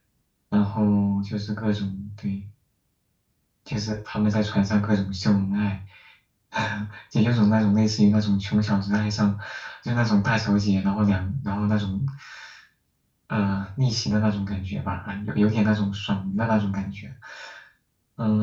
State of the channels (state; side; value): identical; both; correlation 1.00